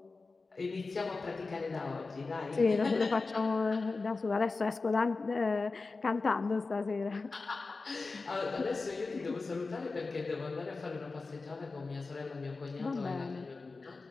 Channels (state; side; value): quieter; right; 3.9 dB